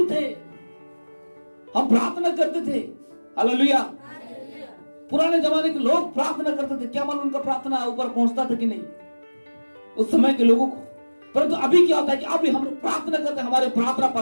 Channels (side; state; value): both; inverted; correlation -1.00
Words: थे, हम प्रार्थना करते थे। हालेलुया। पुराने जमाने के लोग प्रार्थना करते थे, क्या मालूम उनका प्रार्थना ऊपर पहुंचता था कि नहीं उस समय के लोगों को। परंतु अभी क्या होता है कि अभी हम प्रार्थना करते हैं, हमारे प्रार्थना